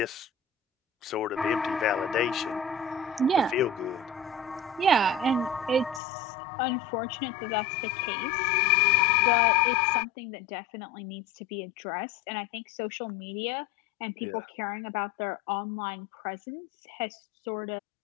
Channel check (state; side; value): drops out; right; at 6.0 s